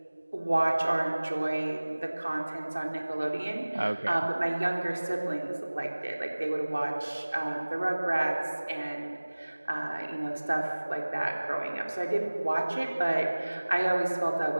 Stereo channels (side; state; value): both; inverted; correlation -1.00